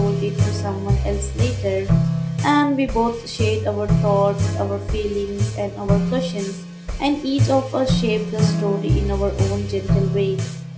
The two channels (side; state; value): both; identical; correlation 1.00